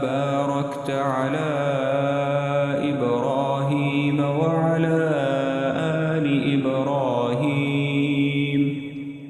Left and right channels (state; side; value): identical; both; correlation 1.00